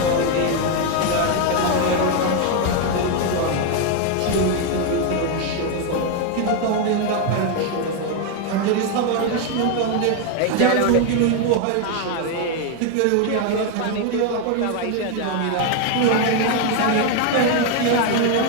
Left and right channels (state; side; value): different; both; correlation 0.01